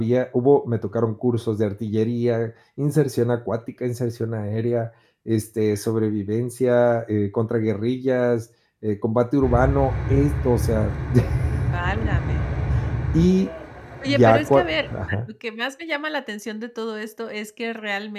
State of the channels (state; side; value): identical; both; correlation 1.00